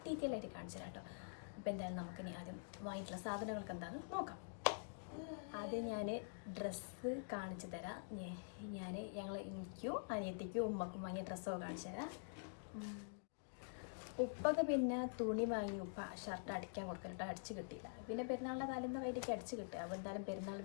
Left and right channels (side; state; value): right; silent; digital silence